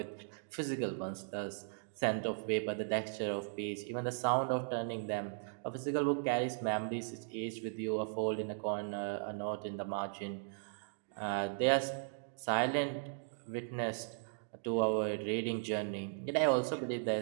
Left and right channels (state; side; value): silent; left; digital silence